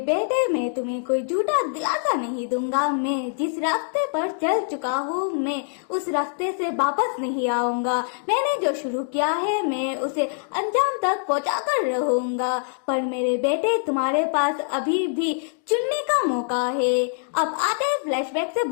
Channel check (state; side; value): silent; right; digital silence